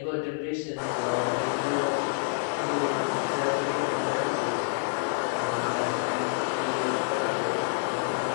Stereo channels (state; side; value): silent; right; 59 dB below the other